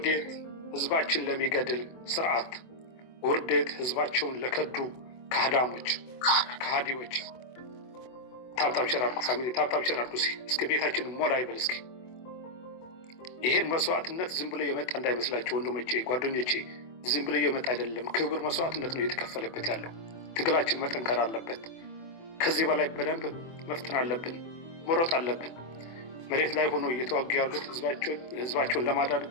ህዝባችን ለሚገድል ስርዓት፣ ውርዴት ህዝባቸውን ለከዱ ከሃዲዎች። ታብታብ ሸር አድርጉ ፋሚሊ፣ ታብታብ ሸር አድርጉ። እስኪ ቤታችን ሞላ ይበል። እስኪ ይሄን መስዋዕትነት ዝም ብሎ የመጣ እንዳይመስላችሁ ወንድሞቼ፣ ጓደኞቼ፣ ዝም ብሎ የመጣ አይደለም። ክብር መስዋዕትነት ነው የተከፈለበት ያለው። ትግላችን መጠንከር አለበት። ከዚህ በላይ በደንብ መፍጠን አለብን፣ መሮጥ አለብን። መሬት ላይ ሆኖ እየተዋጉ ያሉት ህዝባቸውን ለማዳን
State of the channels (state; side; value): late; right; 24 ms